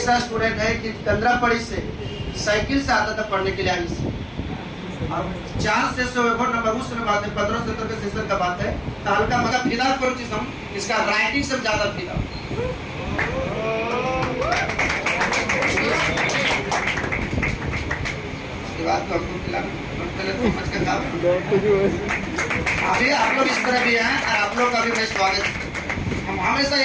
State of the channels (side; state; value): both; identical; correlation 1.00